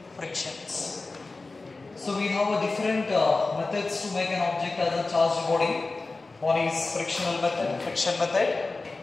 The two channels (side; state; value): right; quieter; 3.6 dB